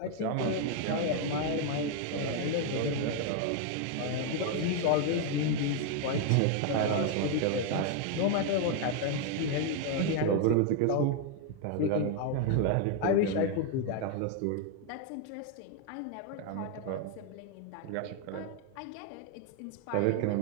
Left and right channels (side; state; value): both; different; correlation 0.01